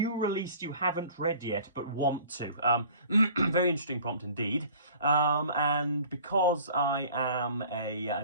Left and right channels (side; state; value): both; inverted; correlation -0.48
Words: release you haven't read yet but want to. Very interesting prompt indeed. And because I am